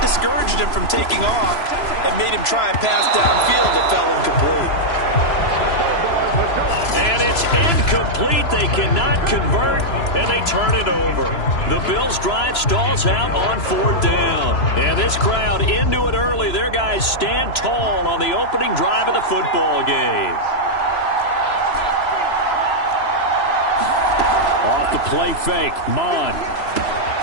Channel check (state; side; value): late; right; 3.0 ms